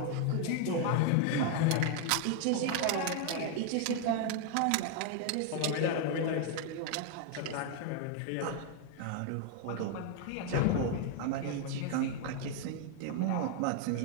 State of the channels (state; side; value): different; both; correlation 0.00